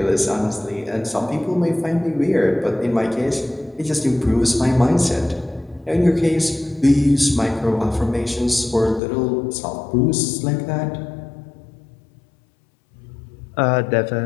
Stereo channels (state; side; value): drops out; right; at 9.0 s